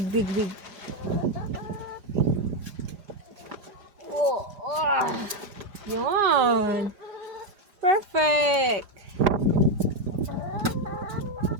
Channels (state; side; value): late; left; 5.0 ms